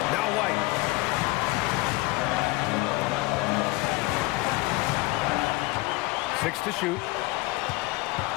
Now White. 6 to shoot.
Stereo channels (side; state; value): right; quieter; 22.0 dB